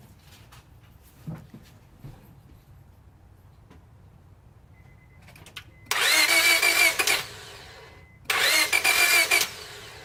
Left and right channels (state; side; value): identical; both; correlation 1.00